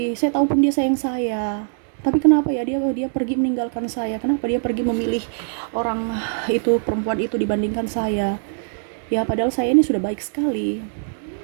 saya tahu pun dia sayang saya, tapi kenapa ya dia pergi meninggalkan saya? Kenapa dia pergi memilih orang itu, perempuan itu dibandingkan saya? Ya padahal saya ini sudah baik sekali,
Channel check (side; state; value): left; silent; 61 dB below the other